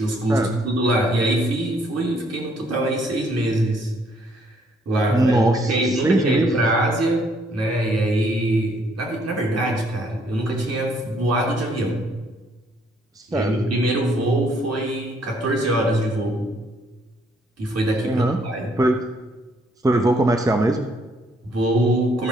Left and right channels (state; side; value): normal; both; correlation 0.67